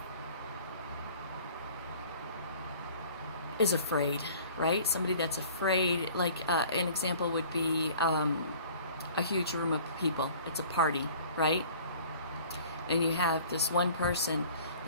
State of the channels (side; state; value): both; inverted; correlation -0.48